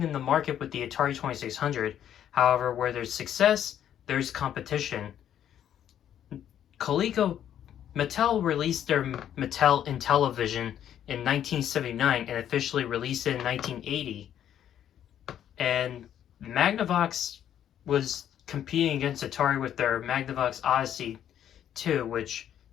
in the market with the Atari 2600. However, where there's success, there's competition. Mattel released their Mattel Intellivision in 1979 and officially released it in 1980. And Magnavox was competing against Atari with their Magnavox Odyssey 2, which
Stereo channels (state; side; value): quieter; right; 10.3 dB